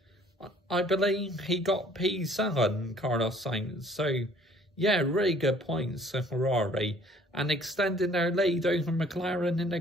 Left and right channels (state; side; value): normal; both; correlation 0.57